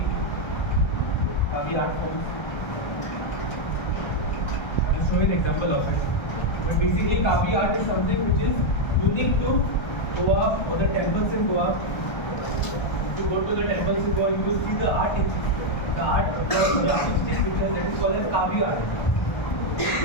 art forms. I will show you an example of it. But basically, Kavi art is something which is unique to Goa or the temples in Goa. If you go to the temples in Goa, you will see the art, the artistic picture that is called as Kavi art.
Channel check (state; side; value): late; right; 1.3 ms